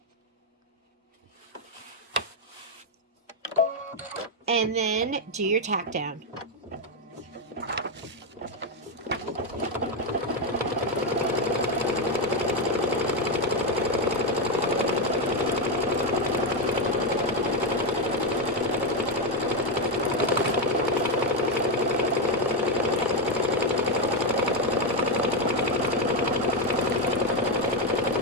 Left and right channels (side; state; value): both; normal; correlation 0.06